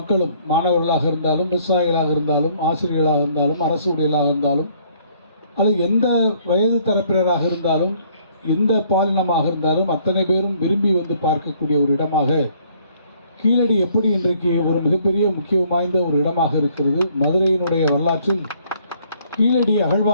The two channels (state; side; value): inverted; both; correlation -0.63